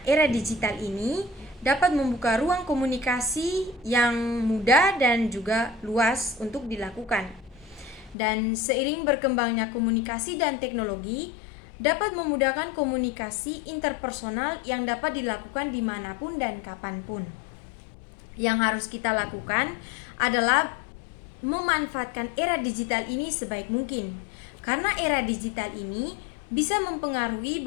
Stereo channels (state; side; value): drops out; right; at 8.2 s